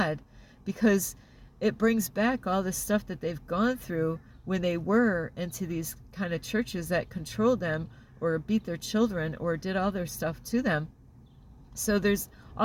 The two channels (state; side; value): identical; both; correlation 1.00